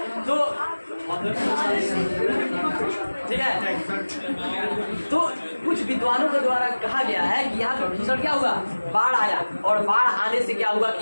तो ठीक है, तो कुछ विद्वानों के द्वारा कहा गया है कि यहाँ पे भीषण क्या हुआ, बाढ़ आया। और बाढ़ आने से क्या हुआ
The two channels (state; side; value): inverted; both; correlation -1.00